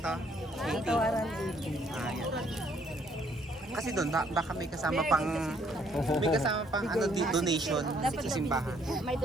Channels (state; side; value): normal; both; correlation 0.66